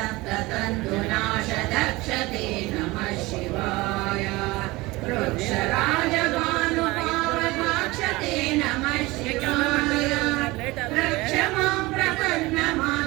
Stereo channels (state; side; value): quieter; left; 21.3 dB